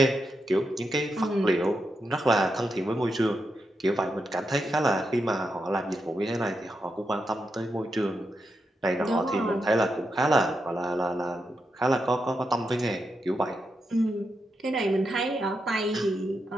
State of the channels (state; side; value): normal; both; correlation 0.85